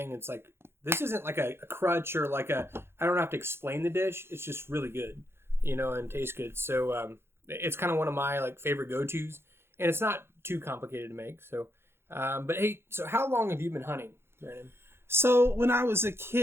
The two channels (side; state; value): left; late; 0.12 ms